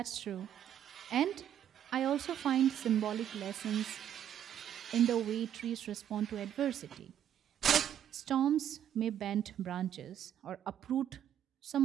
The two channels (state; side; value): quieter; left; 10.1 dB